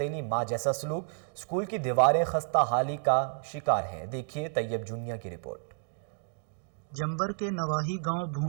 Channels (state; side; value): silent; left; digital silence